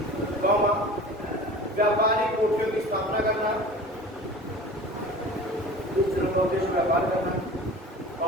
व्यापारिक कोठियों की स्थापना करना। इस चरण का उद्देश्य व्यापार करना,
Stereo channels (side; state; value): both; normal; correlation 0.39